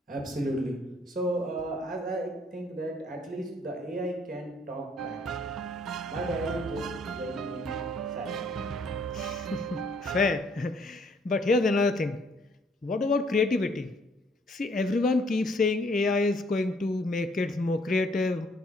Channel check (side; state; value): both; normal; correlation 0.64